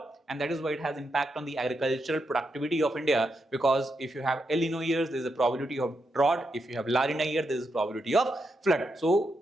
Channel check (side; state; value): both; normal; correlation 0.83